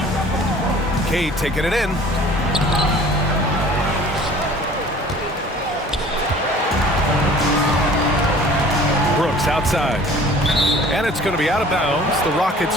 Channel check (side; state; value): both; normal; correlation 0.48